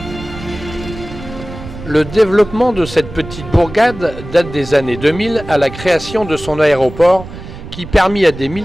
Le développement de cette petite bourgade date des années 2000 à la création de son aéroport qui permit à des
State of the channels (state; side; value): noise; right; rumble, 13 dB below the sound